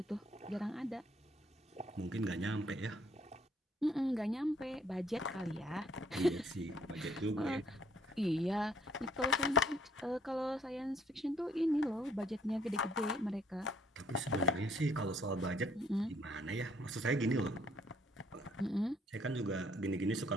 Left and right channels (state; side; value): normal; both; correlation 0.63